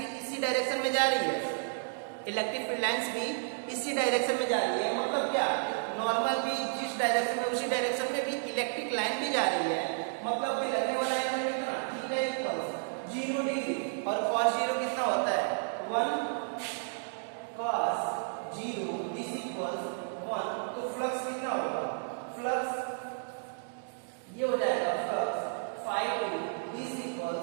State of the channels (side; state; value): left; silent; digital silence